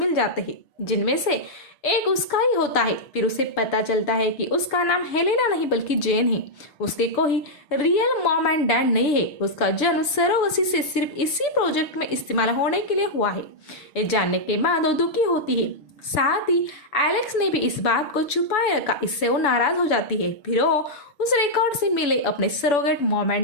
जाते हैं, जिनमें से एक उसका ही होता है। फिर उसे पता चलता है कि उसका नाम हेलेना नहीं बल्कि जेन है। उसके कोई रियल मॉम एंड डैड नहीं है। उसका जन्म सरोगसी से सिर्फ इसी प्रोजेक्ट में इस्तेमाल होने के लिए हुआ है। ये जानने के बाद वो दुखी होती है। साथ ही एलेक्स ने भी इस बात को छुपाए रखा, इससे वो नाराज हो जाती है। फिर वो उस रिकॉर्ड से मिले अपने सरोगेट मॉम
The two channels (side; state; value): right; late; 6.9 ms